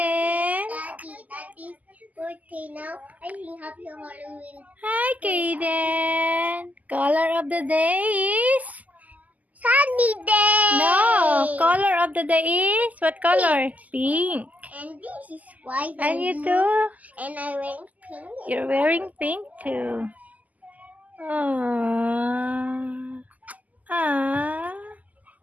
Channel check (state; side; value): late; left; 0.078 ms